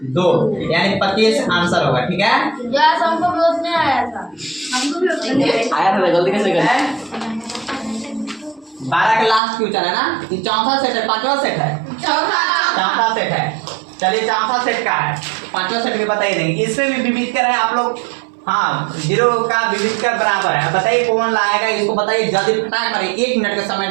2, यानी 25 आंसर होगा। ठीक है यस हमको भी उतने आया था, हमको भी आया था गलती कैसे कर 12 का लास्ट क्वेश्चन है ना, ये चौथा सेट है, पांचवा सेट है, चौथा सेट है। चलिए चौथा सेट का है, पांचवा सेट भी बताइए देंगे, इसमें भी विविधकर है आप लोग। हाँ 0 का विविधकर बराबर है, बताइए कौन लाएगा इसको, बताइए जल्दी फटाक करें, 1 मिनट का समय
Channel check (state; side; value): drops out; left; at 9.4 s